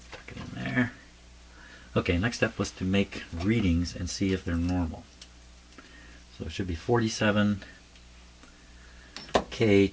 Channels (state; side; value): identical; both; correlation 1.00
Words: it in there. Okay, next step was to make readings and see if they're normal. So it should be 47K